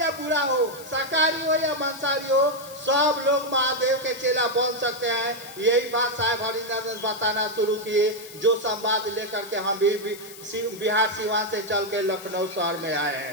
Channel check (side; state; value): left; noise; hiss, 17 dB below the sound